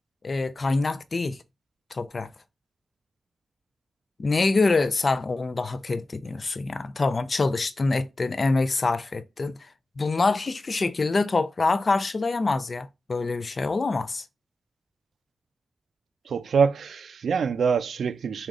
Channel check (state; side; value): normal; both; correlation 0.91